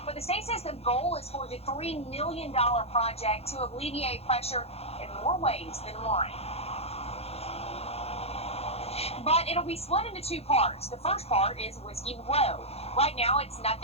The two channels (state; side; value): late; right; 0.29 ms